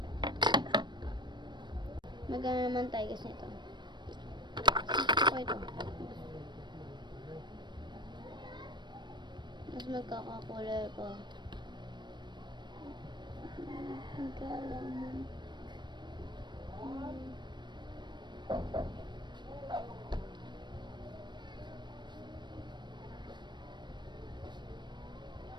Magana naman tayo guys nito. Gusto ko ito. Mas magkakakulay ko. Magkalaman.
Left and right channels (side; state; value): left; late; 0.22 ms